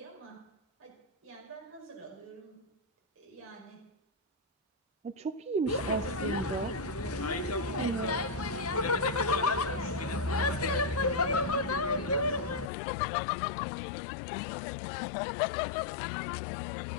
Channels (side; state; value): right; drops out; at 12.7 s